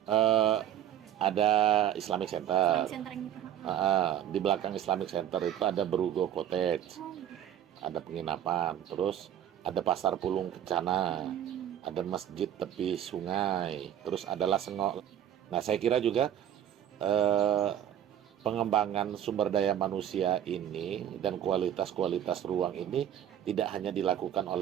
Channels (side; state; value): left; quieter; 10.6 dB